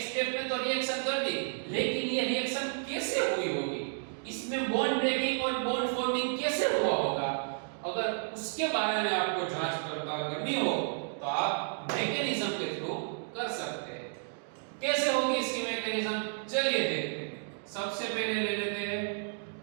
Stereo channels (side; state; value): left; silent; digital silence